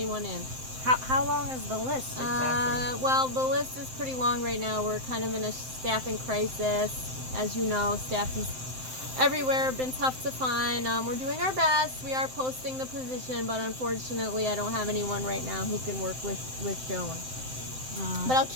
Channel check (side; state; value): left; late; 7.7 ms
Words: in. How long is the list exactly? Well, the list is pretty long right now. We're kind of in a staffing crisis. As you know, staff is everywhere, been tough to find. We're doing our best. We are posting the position, but unfortunately, I don't have anyone right now who can work with Joan. But I'll